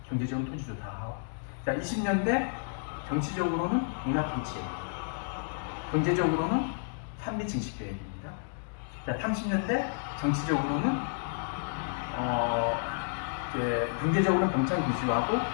경제적으로 토지조사 사업. 자, 20년대 정치적으로는 문화통치예요. 경제적으로는 산미 증식 계획입니다. 자, 30년대 정치적으로는 경제적으로는 병창 기수하고,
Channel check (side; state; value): right; silent; digital silence